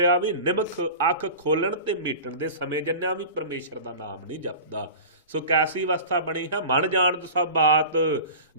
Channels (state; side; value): inverted; both; correlation -0.35